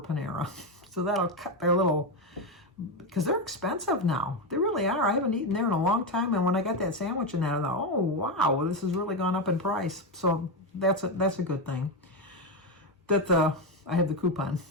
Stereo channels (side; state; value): both; normal; correlation 0.10